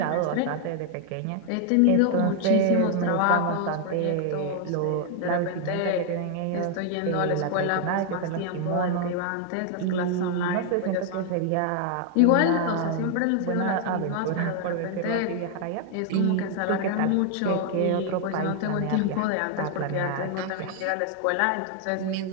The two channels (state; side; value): different; both; correlation 0.00